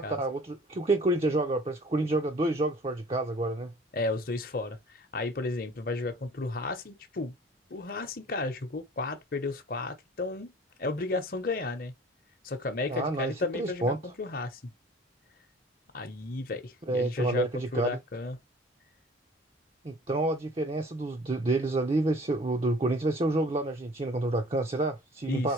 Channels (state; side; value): normal; both; correlation 0.48